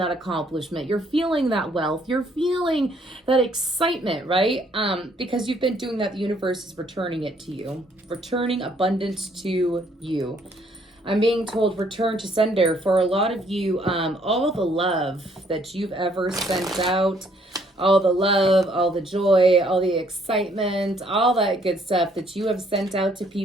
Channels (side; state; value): both; normal; correlation 0.66